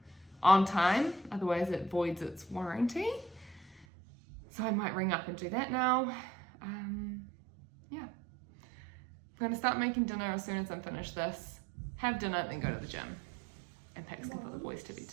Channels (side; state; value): left; drops out; at 3.9 s